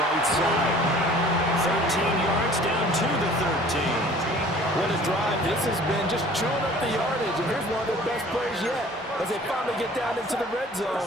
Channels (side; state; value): both; normal; correlation 0.49